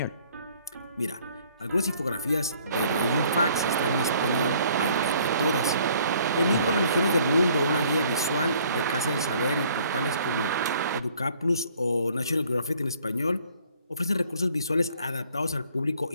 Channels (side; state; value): both; inverted; correlation -0.59